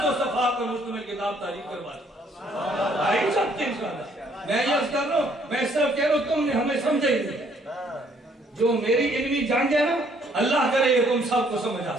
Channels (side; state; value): both; normal; correlation 0.65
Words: صفحات پر مشتمل کتاب تاریخ کروا دی. میں یہ کر رہا ہوں, میں صرف کہہ رہا ہوں تم نے ہمیں سمجھے ہی نہیں. جو میری علمی جان ہے نا, اللہ کرے یہ تم سب کو سمجھ